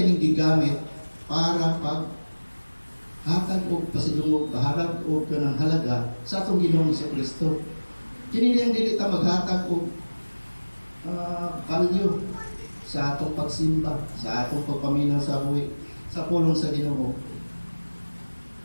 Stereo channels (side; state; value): both; inverted; correlation -1.00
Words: gigamit para hatag o pasidungog, baharag o kanang halaga sa atong Ginoong sa Kristo. Kini niyang dili ta maghatag og value sa atong pagsimba, sa atong pagpaminaw sa buhi, sa pulong sa Ginoo.